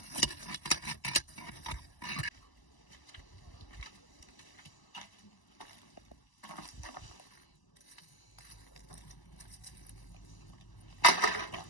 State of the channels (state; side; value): late; right; 1.0 ms